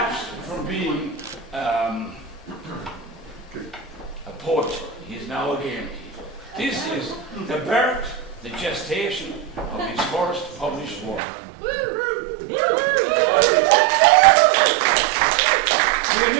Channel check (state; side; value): drops out; left; at 11.2 s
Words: from being a poet. He is now a game keeper. This is the birth, the gestation of his first published work. The